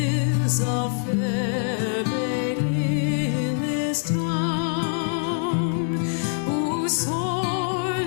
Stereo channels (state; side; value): silent; right; digital silence